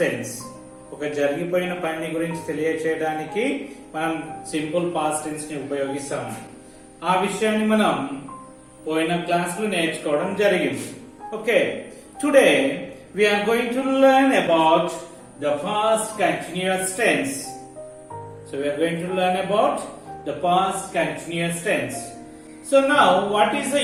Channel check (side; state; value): both; identical; correlation 1.00